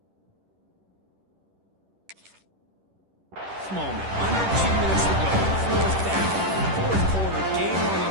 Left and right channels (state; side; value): late; left; 10 ms